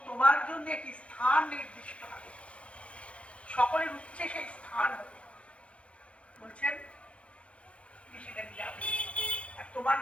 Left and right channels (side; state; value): right; late; 0.061 ms